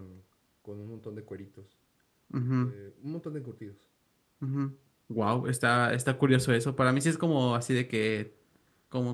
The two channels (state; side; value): identical; both; correlation 1.00